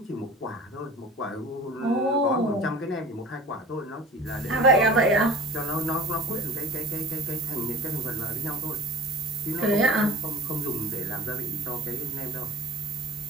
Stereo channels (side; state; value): both; normal; correlation 0.41